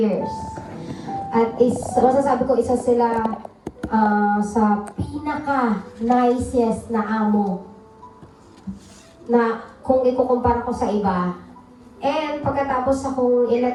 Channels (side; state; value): both; identical; correlation 1.00